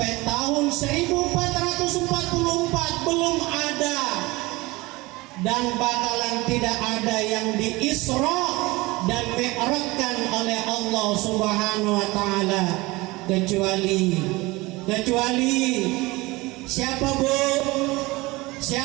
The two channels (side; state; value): left; quieter; 22.1 dB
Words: tahun 1444 belum ada dan bakalan tidak ada yang di Isra dan Mi'rajkan oleh Allah Subhanahu wa taala kecuali siapa Bu?